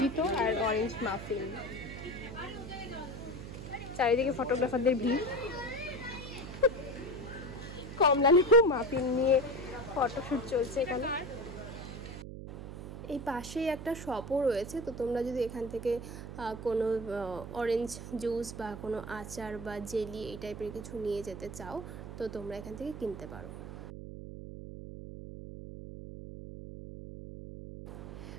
আর অরেঞ্জ মাফিন। চারিদিকে ফটোগ্রাফারদের ভিড়, কমলা লেবু মাফিন নিয়ে ফটোশ্যুট চলছে এখানে। এই পাশেই একটা শপও রয়েছে, তো তোমরা যদি এখান থেকে কোনো অরেঞ্জ জুস বা কোনো আচার বা জেলি এই টাইপের কিছু নিয়ে যেতে চাও তো তোমরা এখান থেকে কিনতে পারো।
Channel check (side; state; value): right; noise; hum, 10 dB below the sound